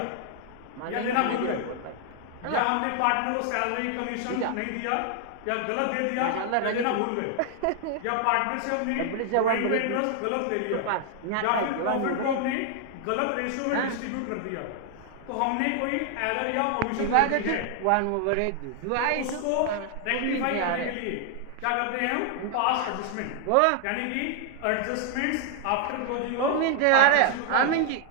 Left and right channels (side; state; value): both; different; correlation 0.00